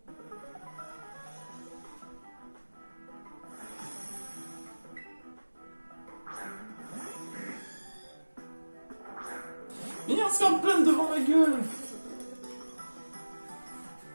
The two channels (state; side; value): inverted; both; correlation -1.00